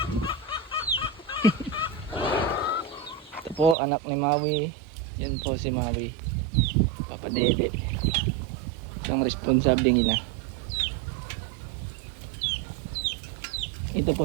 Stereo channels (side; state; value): left; drops out; at 3.8 s